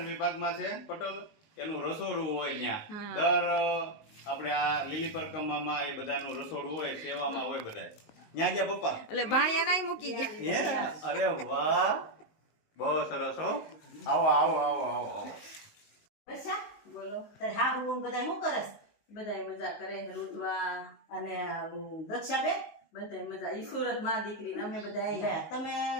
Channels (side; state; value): right; late; 19 ms